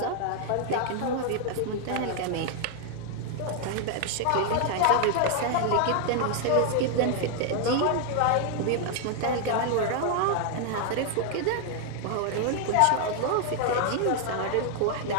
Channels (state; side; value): different; both; correlation 0.00